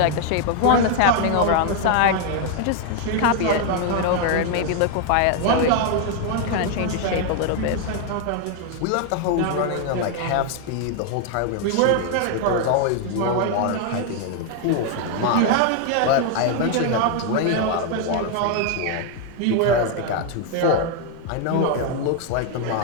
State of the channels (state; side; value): different; both; correlation 0.00